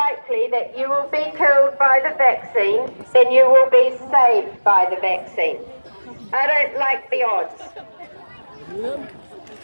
that you will be killed by the vaccine than you will be saved by the vaccine. I don't like the odds.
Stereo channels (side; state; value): both; inverted; correlation -1.00